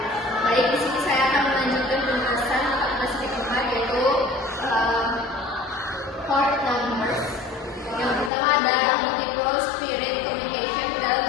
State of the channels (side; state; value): right; drops out; at 8.3 s